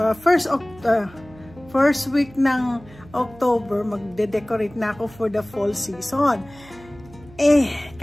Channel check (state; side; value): noise; right; hum, 22 dB below the sound